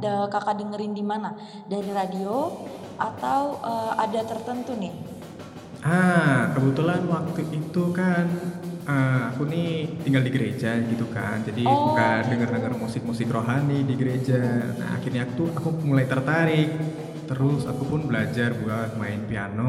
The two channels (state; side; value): identical; both; correlation 1.00